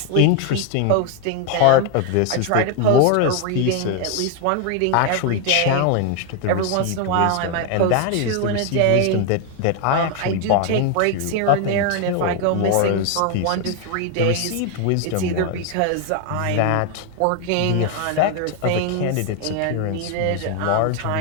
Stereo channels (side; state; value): both; different; correlation 0.01